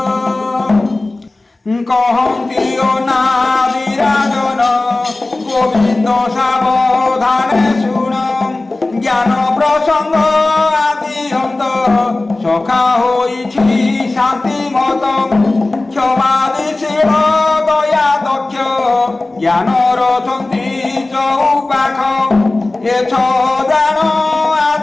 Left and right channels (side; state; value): right; quieter; 3.0 dB